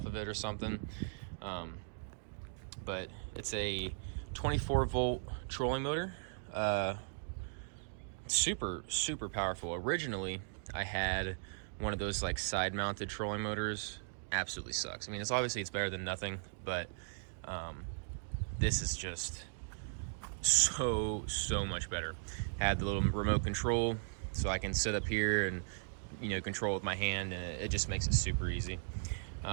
of it or something, but it's a 24 volt trolling motor. Super powerful. Originally I had one of those like side mounted trolling motors. Absolutely sucks. I mean, it's better than nothing, but this is just so much better. Had the little remote control, so I can sit up here and control with my hand, and it just makes it super easy.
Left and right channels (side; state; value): left; silent; digital silence